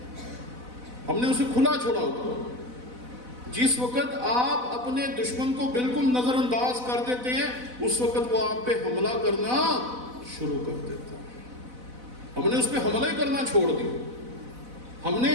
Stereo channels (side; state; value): left; late; 4.0 ms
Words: ہم نے اسے کھلا چھوڑا ہوا. جس وقت آپ اپنے دشمن کو بالکل نظر انداز کر دیتے ہیں اس وقت وہ آپ پہ حملہ کرنا شروع کر دیتا ہے. ہم نے اس پہ حملہ ہی کرنا چھوڑ دیا. ہم